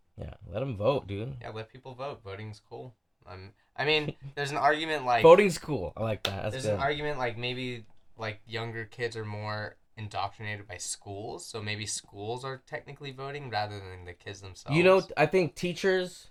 Yeah, let them vote, dude. Yeah, let people vote. Voting's cool. I mean, there's an argument like... Voting's cool. I like that. There's an argument like maybe like younger kids are more indoctrinated by schools, so maybe schools are technically voting rather than the kids themselves. You know, I think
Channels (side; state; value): both; identical; correlation 1.00